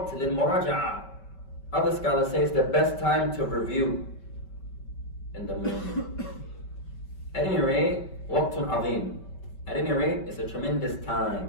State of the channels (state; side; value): late; right; 5.2 ms